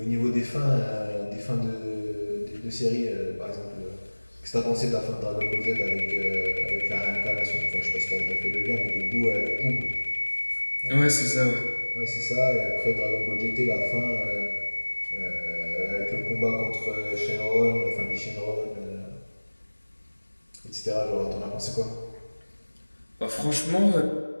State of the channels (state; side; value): inverted; both; correlation -1.00